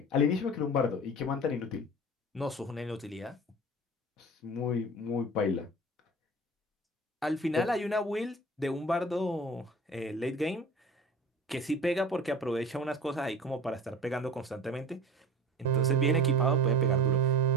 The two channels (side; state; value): both; normal; correlation 0.38